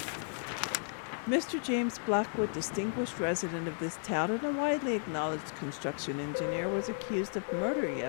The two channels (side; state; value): right; silent; 55 dB below the other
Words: Mr. James Blackwood, distinguished resident of this town and a widely acknowledged construction engineer, was accused of murder